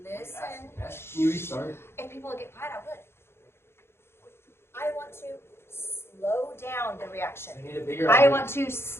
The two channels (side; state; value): right; late; 0.12 ms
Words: you restart? If people would get quiet, I would. I want to slow down the reaction. I need a bigger I object. want to